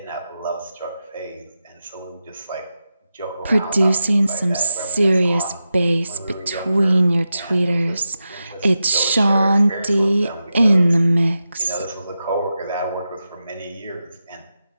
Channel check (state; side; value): inverted; both; correlation -0.91